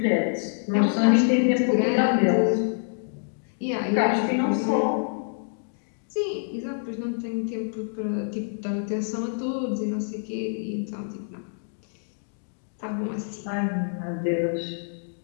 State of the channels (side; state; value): right; silent; digital silence